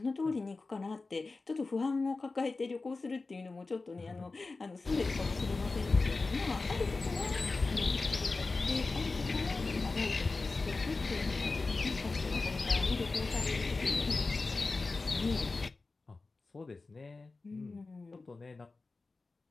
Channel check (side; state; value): right; quieter; 3.7 dB